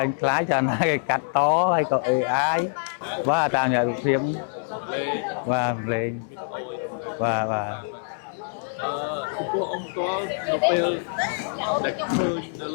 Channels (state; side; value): silent; right; 62 dB below the other